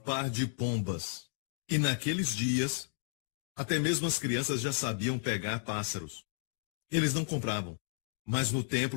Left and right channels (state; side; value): silent; right; digital silence